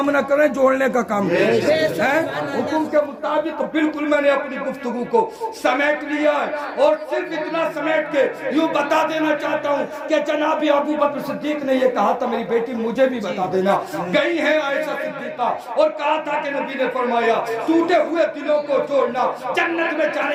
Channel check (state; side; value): identical; both; correlation 1.00